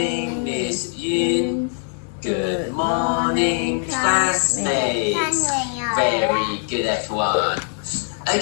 Miss Yun. Good morning, classmates. Very good, everyone.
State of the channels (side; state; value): right; silent; 58 dB below the other